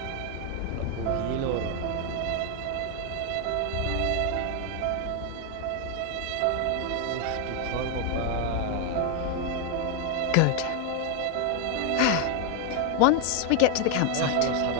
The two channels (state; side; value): different; both; correlation 0.00